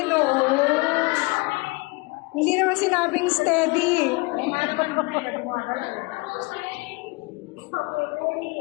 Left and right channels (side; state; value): right; quieter; 26.4 dB